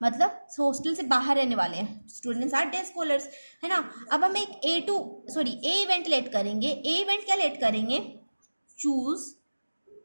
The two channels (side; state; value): both; inverted; correlation -1.00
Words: मतलब हॉस्टल से बाहर रहने वाले हैं, स्टूडेंट्स आर डे स्कॉलर्स, है ना। अब हम एक ए इवेंट लेट करेंगे। ए इवेंट क्या लेट करेंगे, चूज,